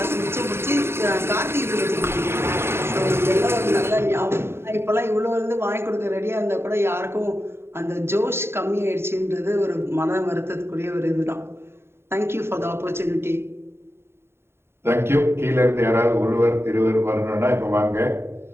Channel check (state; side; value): late; left; 0.12 ms